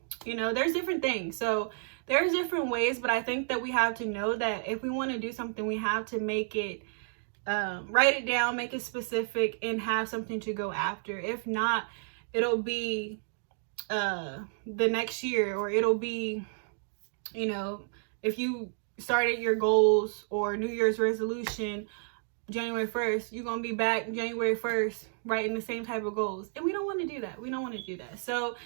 you know, there's different things. So there's different ways, but I think that we have to know that if we want to do something, we have to make it, write it down, make it specific, and have something to go after. If not, it'll be the next year, or it'll be, you know, if you started your goals or New Year's resolution January 1st, you're going to be back January 1st writing the same type of goals. And we don't want to do that. We don't want to do that. So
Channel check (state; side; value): silent; left; digital silence